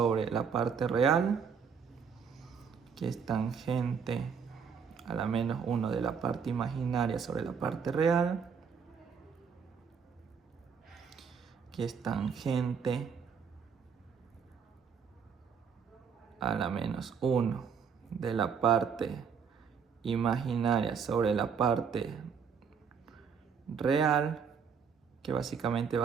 la parte real, que es tangente a la menos 1 de la parte imaginaria sobre la parte real, que es tangente a la menos 1 de la parte imaginaria sobre la parte real, que básicamente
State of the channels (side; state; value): left; quieter; 6.5 dB